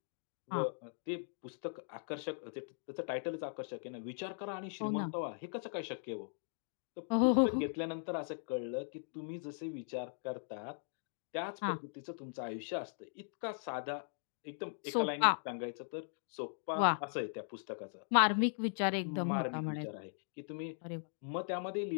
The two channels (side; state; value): right; silent; digital silence